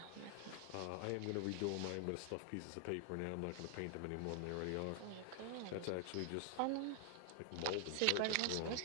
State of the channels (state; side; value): different; both; correlation 0.00